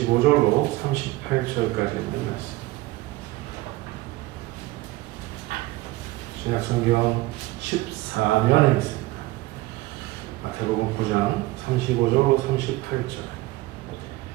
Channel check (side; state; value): left; quieter; 18.8 dB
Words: 38절까지 있는 말씀. 신약성경 14면에 있습니다. 마태복음 9장 35절로 38절.